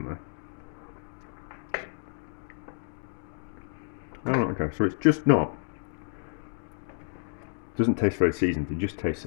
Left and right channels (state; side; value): silent; right; digital silence